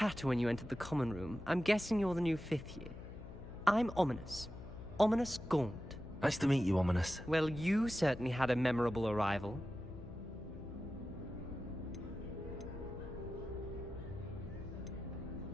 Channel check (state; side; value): noise; left; hum, 13 dB below the sound